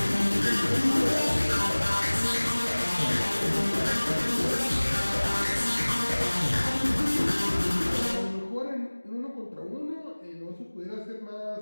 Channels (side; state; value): both; inverted; correlation -1.00